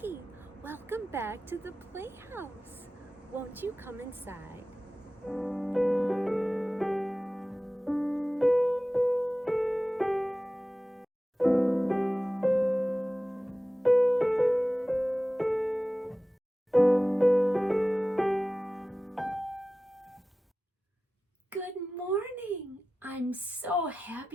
Welcome back to the playhouse. Won't you come inside? Good morning. I'm so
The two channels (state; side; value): normal; both; correlation 0.95